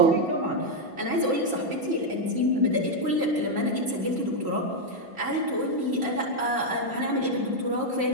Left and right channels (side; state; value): both; normal; correlation 0.00